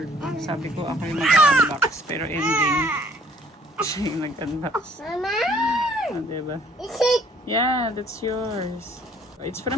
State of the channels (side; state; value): both; normal; correlation 0.59